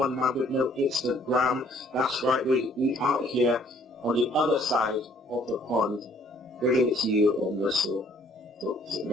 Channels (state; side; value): normal; both; correlation 0.60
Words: man with no Instagram. That's right, we out here on the other side of the pond, bringing it to you on Wrestle.